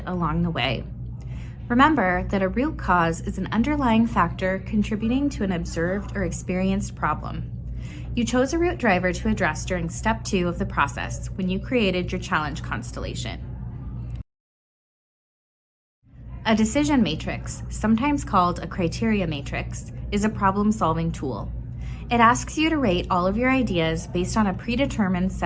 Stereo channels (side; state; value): both; identical; correlation 1.00